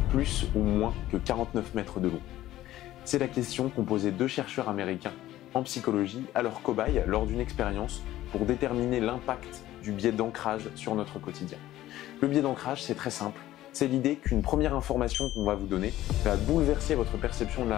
plus ou moins que 49 mètres de long? C'est la question qu'ont posé deux chercheurs américains en psychologie à leurs cobayes lors d'une expérience pour déterminer l'impact du biais d'ancrage sur notre quotidien. Le biais d'ancrage, c'est très simple. C'est l'idée qu'une première information qu'on va vous donner va bouleverser votre perception de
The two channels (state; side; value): quieter; right; 14.6 dB